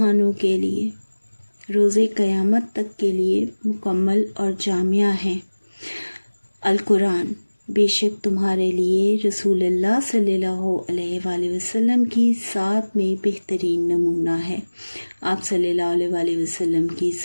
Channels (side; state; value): both; inverted; correlation -1.00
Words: کے لیے، روز قیامت تک کے لیے مکمل اور جامع ہیں۔ القرآن بے شک تمہارے لیے رسول اللہ صلی اللہ علیہ وآلہ وسلم کی ذات میں بہترین نمونہ ہے۔ آپ صلی اللہ علیہ وآلہ وسلم کی